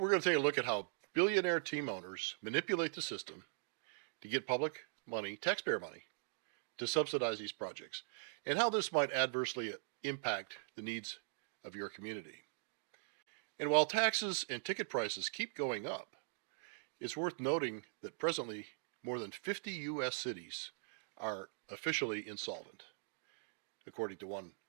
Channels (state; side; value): silent; left; digital silence